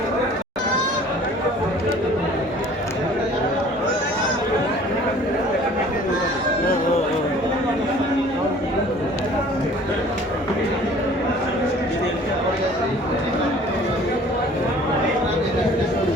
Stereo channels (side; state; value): both; normal; correlation 0.50